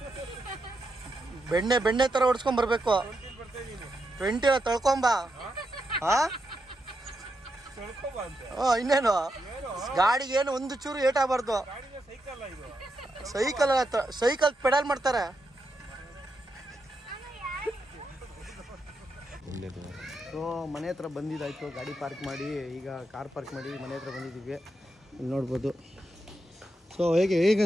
ಬೆಣ್ಣೆ ಥರ ಹೊಡ್ಸ್ಕೊಂಬರ್ಬೇಕು. 20 ತೊಳ್ಕೊಂಬ. ಹಾಂ ಇನ್ನೇನು, ಗಾಡಿಗೆ ಏನು ಒಂದು ಚೂರು ಏಟಾಗಬಾರ್ದು. ಸೈಕಲ್ ಪೆಡಲ್ ಮಾಡ್ತಾರೆ. ಸೊ ಮನೆ ಹತ್ರ ಬಂದಿದ್ದಾಯಿತು, ಗಾಡಿ ಪಾರ್ಕ್ ಮಾಡಿ ಈಗ ಕಾರ್ ಪಾರ್ಕ್ ಮಾಡಿ ಮನೆ ಹತ್ರ ಬಂದಿದ್ದೀವಿ. ಇಲ್ಲಿ ನೋಡ್ಬೋದು ಸೊ ಹೇಗೆ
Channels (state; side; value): normal; both; correlation 0.84